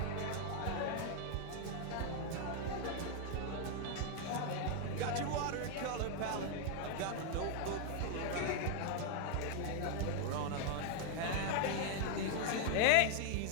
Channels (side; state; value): both; different; correlation 0.01